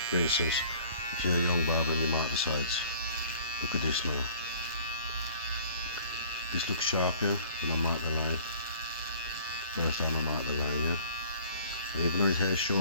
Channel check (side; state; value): both; inverted; correlation -0.52